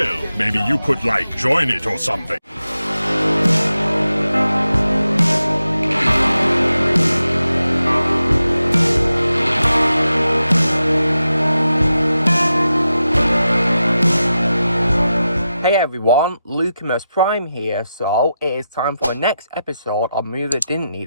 Maybe you could, like, join it or something. Hey everyone, Lucamus Prime here, so it is time for the next episode of Movie That Didn't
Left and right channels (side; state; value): both; inverted; correlation -0.90